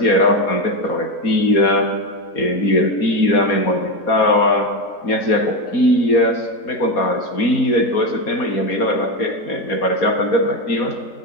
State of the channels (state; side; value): late; right; 4.2 ms